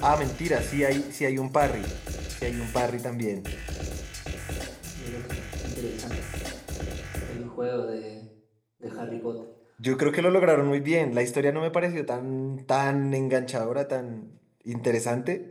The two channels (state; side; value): identical; both; correlation 1.00